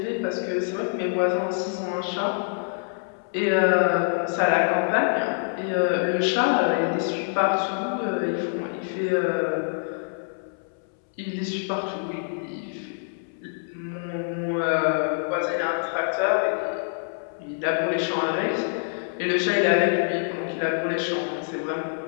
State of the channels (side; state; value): right; silent; 61 dB below the other